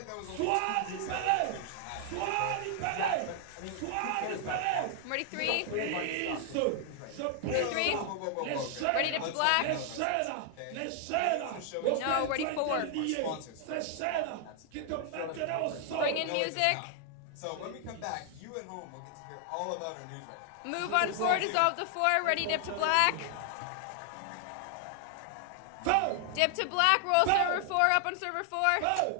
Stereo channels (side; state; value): both; different; correlation 0.00